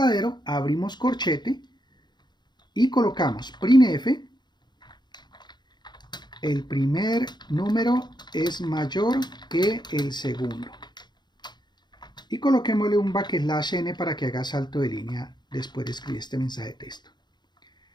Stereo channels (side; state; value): right; late; 0.21 ms